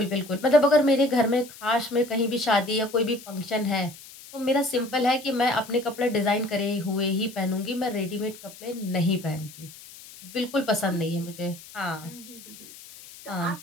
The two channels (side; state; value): left; noise; hiss, 18 dB below the sound